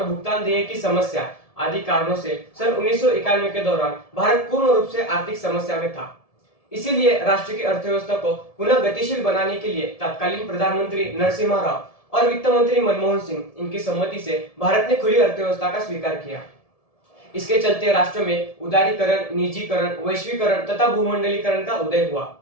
भुगतान देय की समस्या आदि कारणों से सन 1991 के दौरान भारत पूर्ण रूप से आर्थिक समस्या में था। इसीलिए राष्ट्र की अर्थव्यवस्था को पुनः गतिशील बनाने के लिए तत्कालीन प्रधानमंत्री नरसिम्हा राव और वित्त मंत्री मनमोहन सिंह इनकी सम्मति से भारत ने खुली अर्थव्यवस्था का स्वीकार किया। इसके चलते राष्ट्र में उदारीकरण, निजीकरण, वैश्वीकरण तथा भूमंडलीकरण का उदय हुआ।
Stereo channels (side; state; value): right; late; 1.7 ms